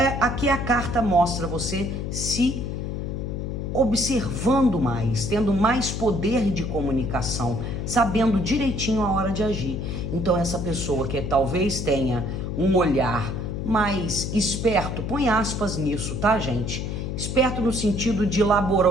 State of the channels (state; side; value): noise; left; hum, 4 dB below the sound